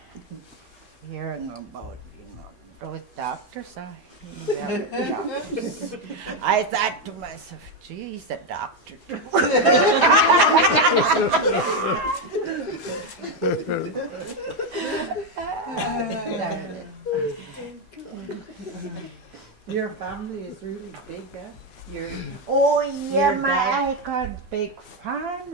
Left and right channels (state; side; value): normal; both; correlation 0.06